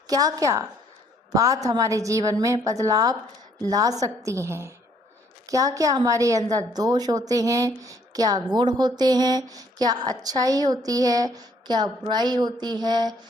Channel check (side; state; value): both; normal; correlation 0.65